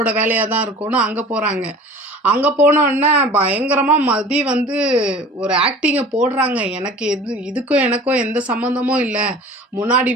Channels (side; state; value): both; normal; correlation 0.43